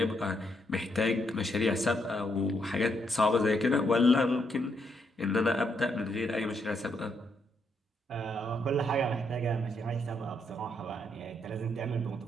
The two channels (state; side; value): normal; both; correlation 0.77